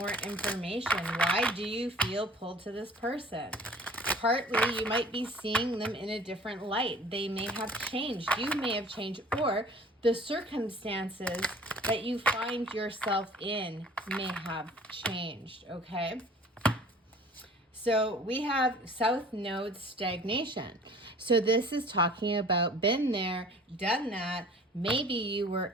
information. Why do you feel pulled to this person? Partly, you might be seeing them in a different light. They may have changed. You may have changed, or the circumstances that you find yourself in may have changed, okay? So we have South Node stagnation. So this is talking about been there, done that. Maybe you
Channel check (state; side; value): normal; both; correlation 0.48